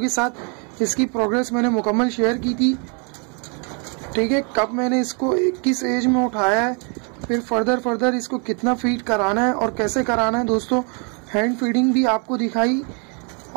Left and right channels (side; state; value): left; quieter; 37.0 dB